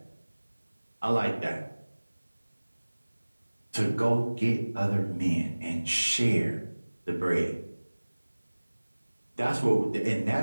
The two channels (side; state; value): both; inverted; correlation -1.00